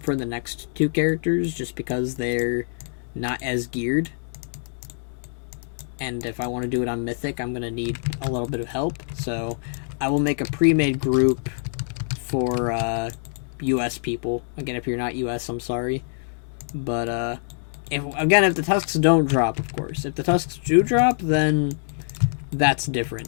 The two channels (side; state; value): right; silent; digital silence